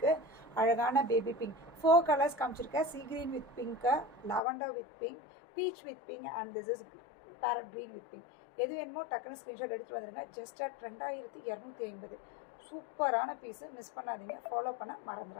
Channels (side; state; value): right; drops out; at 4.4 s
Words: அழகான பேபி பிங்க். 4 கலர்ஸ் காமிச்சிருக்கேன். Sea green with pink, lavender with pink, peach with pink and this is parrot green with pink. எது வேணுமோ டக்குன்னு ஸ்க்ரீன்ஷாட் எடுத்துகிட்டு வந்துடுங்க. Just at 2250. சூப்பரான பீஸு, மிஸ் பண்ணாதீங்க. ஃபாலோ பண்ண